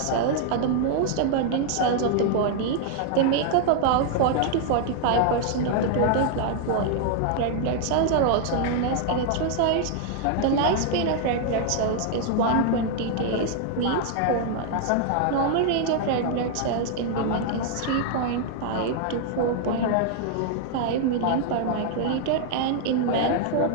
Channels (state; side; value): different; both; correlation 0.00